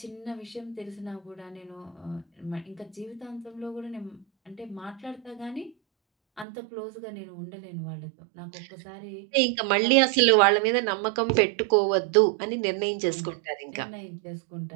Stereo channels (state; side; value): drops out; left; at 6.5 s